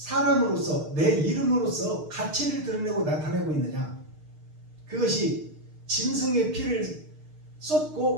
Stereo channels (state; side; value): late; left; 6.5 ms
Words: 내 이름으로서 가치를 드러내고 나타내고 있느냐? 그것이 짐승의 피를